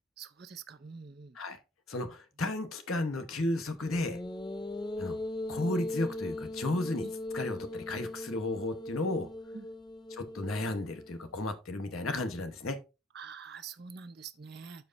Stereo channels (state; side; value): normal; both; correlation 0.65